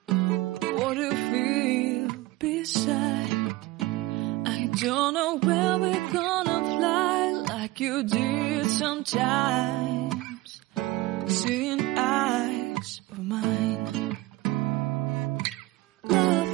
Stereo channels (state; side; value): quieter; left; 19.1 dB